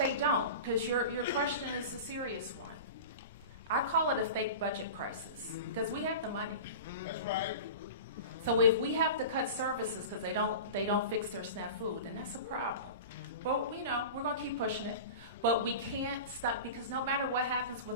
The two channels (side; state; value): both; inverted; correlation -0.31